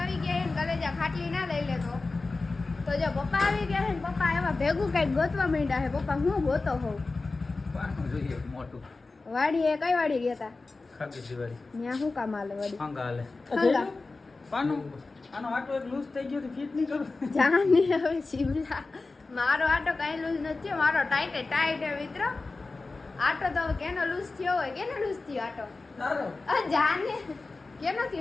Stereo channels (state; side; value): quieter; right; 3.6 dB